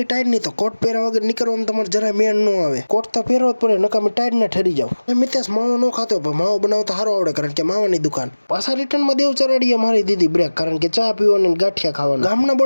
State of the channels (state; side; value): inverted; both; correlation -1.00